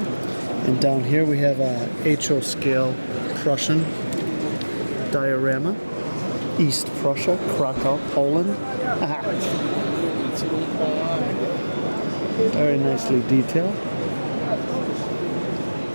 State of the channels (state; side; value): inverted; both; correlation -1.00